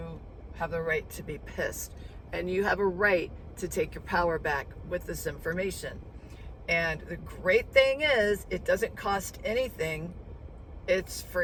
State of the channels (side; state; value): both; identical; correlation 1.00